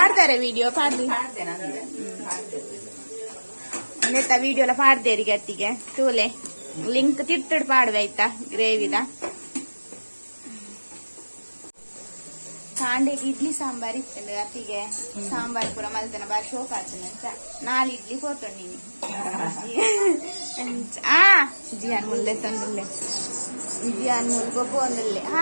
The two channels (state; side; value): inverted; both; correlation -1.00